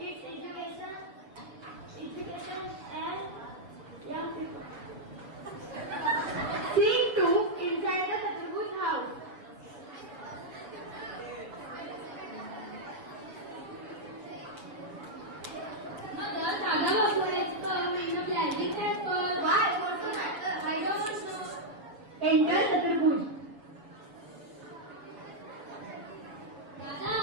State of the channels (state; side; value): late; left; 7.1 ms